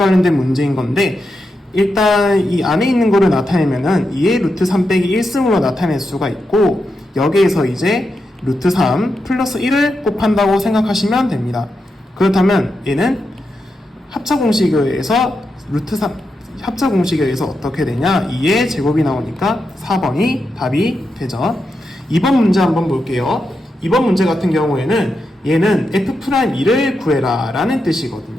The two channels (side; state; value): both; normal; correlation 0.87